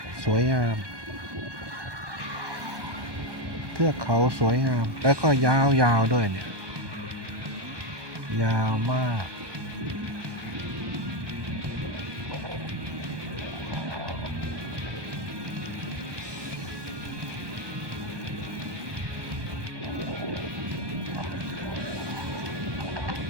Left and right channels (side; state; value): left; late; 1.2 ms